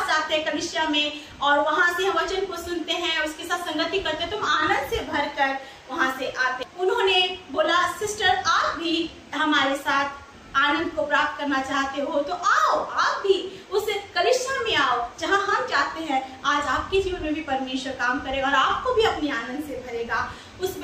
जाते हैं कलीसिया में और वहां से हम वचन को सुनते हैं, उसके साथ संगति करते हैं, तो हम आनंद से भरकर वहां से आते। उन्होंने बोला सिस्टर आप भी हमारे साथ आनंद को प्राप्त करना चाहते हो तो आओ, आप भी उस कलीसिया में आओ जहां हम जाते हैं। आज आपके जीवन में भी परमेश्वर काम करेगा और आपको भी अपनी आनंद से भरेगा। उस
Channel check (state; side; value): identical; both; correlation 1.00